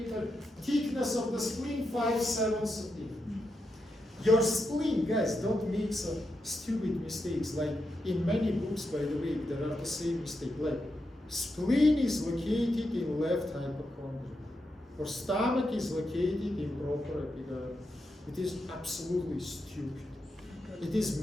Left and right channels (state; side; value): normal; both; correlation 0.85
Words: Thickness of the spleen, 5-7 centimeters. Your spleen, guys, don't make some stupid mistakes. Like in many books, by the way, there are the same mistake. Like spleen is located in left hypochondria, or stomach is located in proper epigastrium. It is absolutely stupid. It